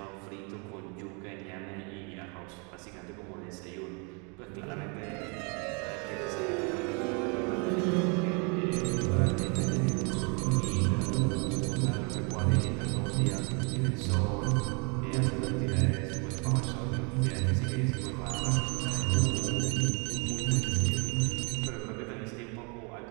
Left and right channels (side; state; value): left; quieter; 33.9 dB